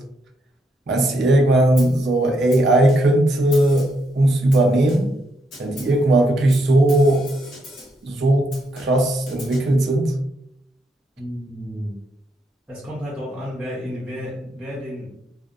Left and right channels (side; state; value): both; normal; correlation 0.77